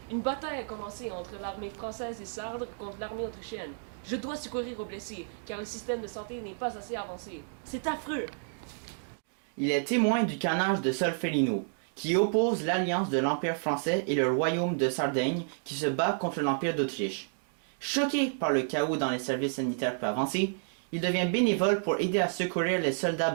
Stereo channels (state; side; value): silent; left; digital silence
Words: Une bataille a commencé entre l'armée française et sarde contre l'armée autrichienne. Je dois secourir aux blessés, car le système de santé n'est pas assez avancé. C'est affreux! Il est témoin du carnage de Solferino, qui oppose l'alliance de l'Empire français et le royaume de Sardaigne qui se bat contre l'Empire d'Autriche. Choqué par le chaos dans les services sanitaires peu avancés, il devient bénévole pour aider à secourir les soldats